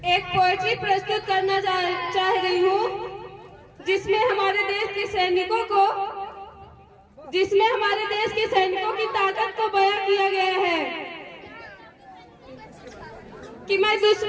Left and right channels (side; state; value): both; identical; correlation 1.00